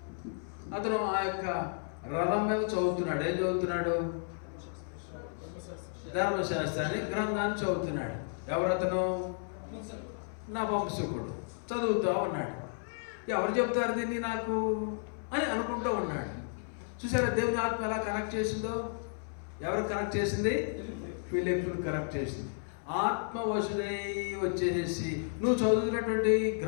అతను ఆ యొక్క రథం మీద చదువుతున్నాడు. ఏం చదువుతున్నాడు? ధర్మశాస్త్రాన్ని గ్రంథాన్ని చదువుతున్నాడు. ఎవరతను? నా వంశకుడు. చదువుతూ ఉన్నాడు. ఎవరు చెప్తారు దీన్ని నాకు అని అనుకుంటూ ఉన్నాడు. చూసారా దేవుని ఆత్మ ఎలా కనెక్ట్ చేసిందో? ఎవరు కనెక్ట్ చేసింది? ఫిలిప్పును కనెక్ట్ చేసింది. ఆత్మ వశుడై వచ్చేసి నువ్వు చదువుతున్నటువంటి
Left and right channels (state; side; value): silent; right; 56 dB below the other